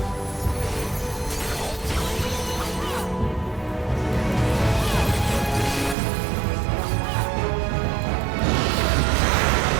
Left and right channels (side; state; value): left; drops out; at 6.0 s